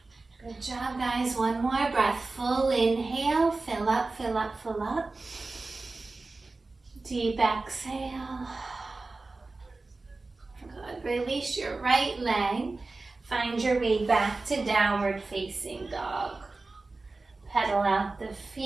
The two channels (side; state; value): left; quieter; 3.5 dB